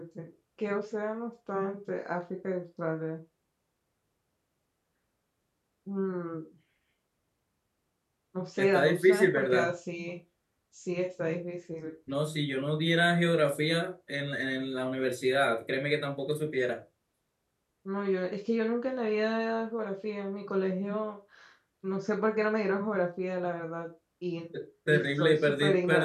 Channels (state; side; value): identical; both; correlation 1.00